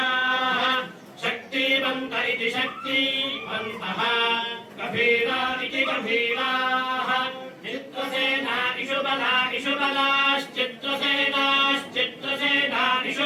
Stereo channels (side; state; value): both; identical; correlation 1.00